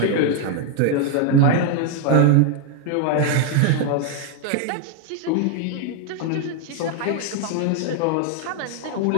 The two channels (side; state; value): both; different; correlation 0.00